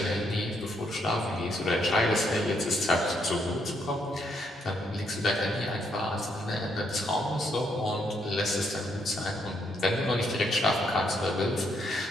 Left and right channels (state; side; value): normal; both; correlation 0.74